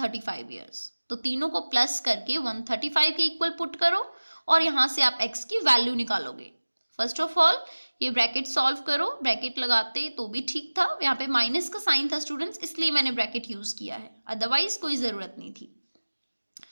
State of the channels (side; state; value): both; inverted; correlation -1.00